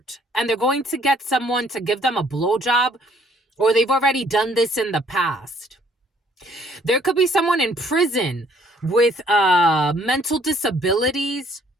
and they're going to get someone to give them a blowjob, or they've already done this in the past. There could be someone in prison with mental disabilities.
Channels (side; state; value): both; normal; correlation 0.62